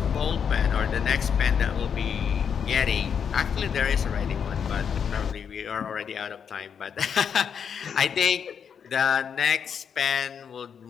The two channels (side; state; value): right; quieter; 7.3 dB